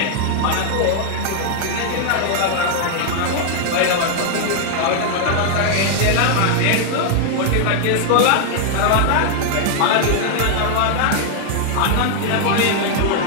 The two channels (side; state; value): both; different; correlation 0.00